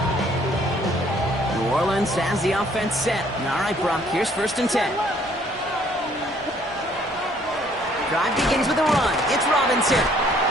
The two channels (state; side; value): normal; both; correlation 0.61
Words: New Orleans has the offense set. All right, Brock, here's first and 10. Drive begins with a run. It's Robinson.